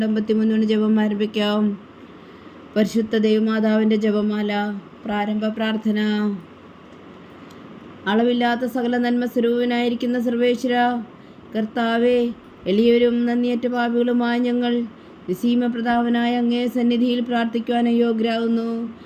53 ജപം ആരംഭിക്കാം. പരിശുദ്ധ ദൈവമാതാവിൻ്റെ ജപമാല. പ്രാരംഭ പ്രാർത്ഥന. അളവില്ലാത്ത സകല നന്മ സ്വരൂപനായിരിക്കുന്ന സർവേശ്വര കർത്താവേ, എളിയവരും നന്ദിയേറ്റ പാപികളുമായ ഞങ്ങൾ നിസീമ പ്രതാപനായ അങ്ങേ സന്നിധിയിൽ പ്രാർത്ഥിക്കുവാൻ അയോഗ്യരാകുന്നു.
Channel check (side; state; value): both; identical; correlation 1.00